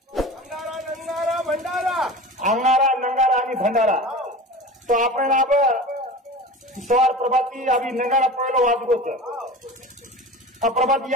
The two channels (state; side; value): normal; both; correlation 0.34